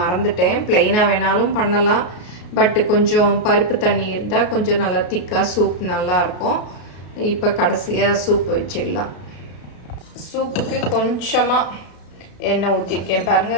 ப்ளைனாக வேணாலும் பண்ணலாம், பட்டு கொஞ்சம் பருப்பு தண்ணி இருந்தால் கொஞ்சம் நல்லா திக்காக சூப் நல்லாயிருக்கும். இப்போ கடைசியாக சூப் வச்சிடலாம். சூப்புக்கு கொஞ்சமாக எண்ணெய் ஊற்றிருக்கேன்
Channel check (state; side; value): late; right; 33 ms